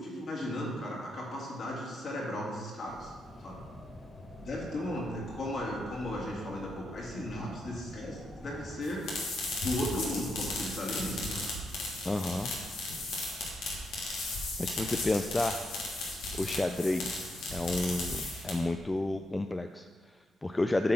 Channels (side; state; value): both; normal; correlation 0.82